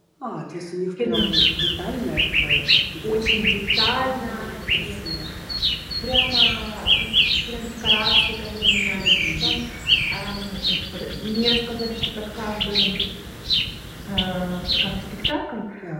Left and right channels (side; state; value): both; identical; correlation 1.00